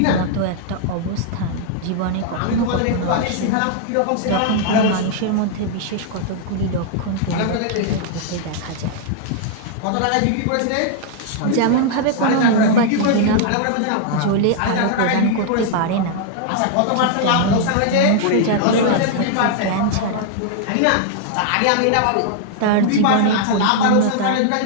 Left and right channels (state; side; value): different; both; correlation -0.01